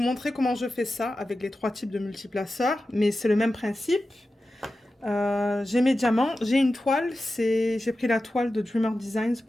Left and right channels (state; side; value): normal; both; correlation 0.93